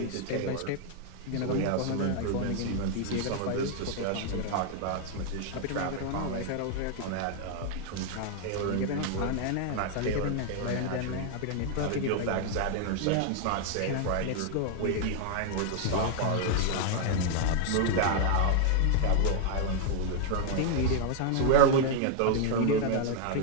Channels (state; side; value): different; both; correlation 0.00